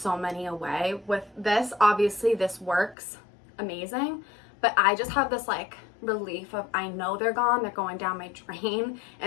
many away. With this, obviously this works amazing, but I just have this like relief of, I know they're gone, they're going down my drain.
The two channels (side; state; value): right; drops out; at 3.0 s